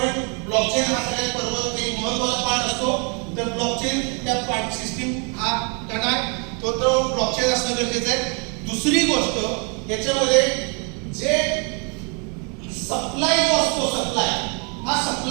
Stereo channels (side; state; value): left; quieter; 35.4 dB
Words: ब्लॉकचेन हा सगळ्यात पर्वत एक महत्त्वाचा पार्ट असतो. तर ब्लॉकचेन त्या पार्ट सिस्टीम हा कणा तो ब्लॉकचेन असणं गरजेचं आहे. दुसरी गोष्ट याच्यामध्ये जे सप्लाय जो असतो सप्लाय हा